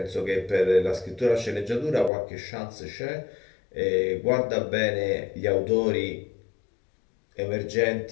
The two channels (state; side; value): drops out; right; at 2.1 s